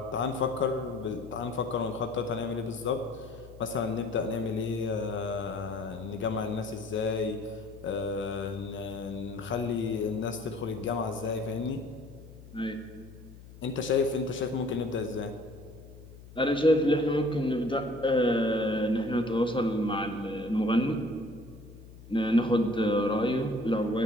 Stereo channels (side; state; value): left; noise; hum, 18 dB below the sound